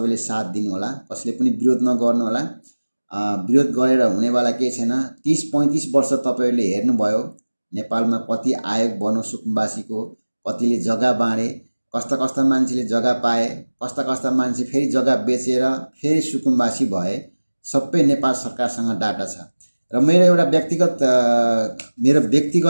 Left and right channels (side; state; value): both; inverted; correlation -1.00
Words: साथ दिनु होला। कसैले पनि विरोध नगर्नु होला। विरोध गरेर हुनेवाला केही छैन। 30-35 वर्ष तपाईहरुले हेर्नुभयो नेपालमा कति आयोग बन्यो सुकुम्बासीको, कतिले जग्गा बाँडे, कस्ता मान्छेले जग्गा पाए, कस्ता मान्छे फेरि जग्गा बेचेर फेरि सुकुम्बासी भए। सबै नेपाल सरकारसँग डाटा छ। र मेरो